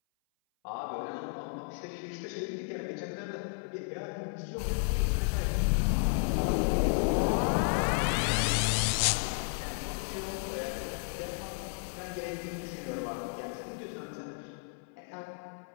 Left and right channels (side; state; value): right; silent; 56 dB below the other